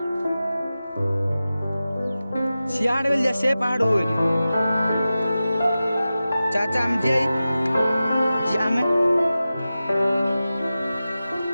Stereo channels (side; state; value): both; inverted; correlation -0.94